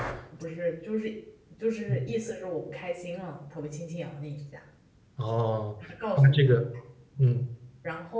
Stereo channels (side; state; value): both; identical; correlation 1.00